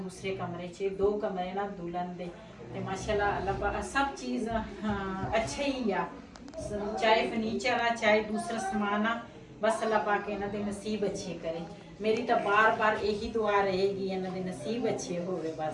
ਕਮਰੇ 'ਚ। ਦੋ ਕਮਰੇ ਨਾ ਦੁਲਹਨ ਦੇ। ਤੇ ਮਾਸ਼ਾਅੱਲਾ ਅੱਲਾਹ ਸਭ ਚੀਜ਼ ਅੱਛਾ ਹੀ ਆ, ਚਾਹੇ ਫਰਨੀਚਰ ਆ ਚਾਹੇ ਦੂਸਰਾ ਸਮਾਨ ਆ, ਬਸ ਅੱਲਾਹ ਪਾਕ ਇਹਨਾਂ ਦੇ ਨਸੀਬ ਅੱਛੇ ਕਰੇ। ਮੇਰੀ ਤਾਂ ਬਾਰ-ਬਾਰ ਇਹੀ ਦੁਆ ਰਹੇਗੀ ਇਹਨਾਂ ਦੇ ਨਸੀਬ ਅੱਛੇ ਹੋਵੇ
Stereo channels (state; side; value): identical; both; correlation 1.00